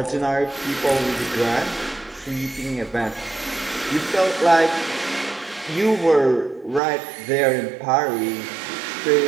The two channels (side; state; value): left; drops out; at 6.8 s